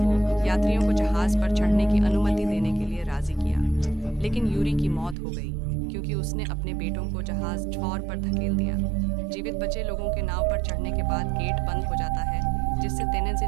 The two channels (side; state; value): left; drops out; at 5.2 s